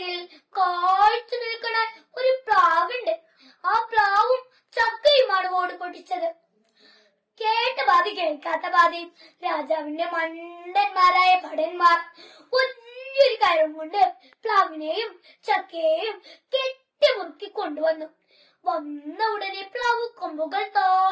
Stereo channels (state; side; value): identical; both; correlation 1.00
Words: കാഴ്ച നിൽക്കണ ഒരു പ്ലാവുണ്ട്. ആ പ്ലാവും ചക്കയുമാണ് ഓട് പൊട്ടിച്ചത്. കേട്ട പാതി കേൾക്കാത്ത പാതി രാജാവിന്റെ മണ്ടന്മാരായ ഭടന്മാർ വലിയൊരു കയറും കൊണ്ട് പ്ലാവിനെയും ചക്കയെയും കെട്ടിമുറുക്കി കൊണ്ടുവന്നു. വന്ന ഉടനെ പ്ലാവ് കൊമ്പുകൾ